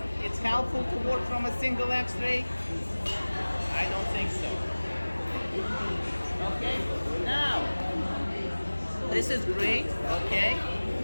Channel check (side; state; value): both; inverted; correlation -1.00